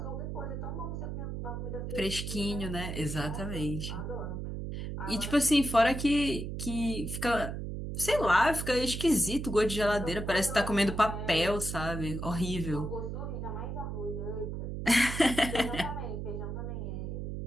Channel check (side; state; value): right; noise; hum, 5 dB below the sound